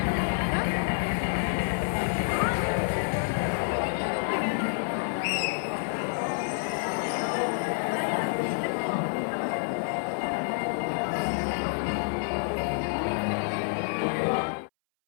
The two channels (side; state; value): right; silent; 59 dB below the other